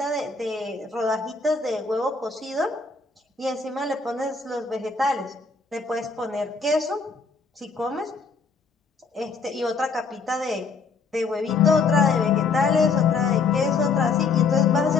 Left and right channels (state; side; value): quieter; right; 4.6 dB